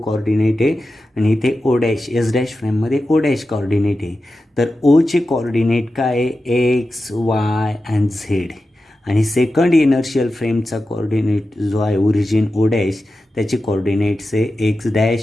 कॉर्डिनेट आहे आणि इथे ओ डॅश एस डॅश फ्रेममध्ये ओ डॅश कॉर्डिनेट आहे. तर ओचे कॉर्डिनेट काय आहे एक्स वाय अँड झेड, आणि सेकंड इनर्शियल फ्रेमचा कॉर्डिनेट जो आहे ओरिजिन ओ डॅश त्याचे कॉर्डिनेट्स आहे x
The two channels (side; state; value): both; normal; correlation 0.92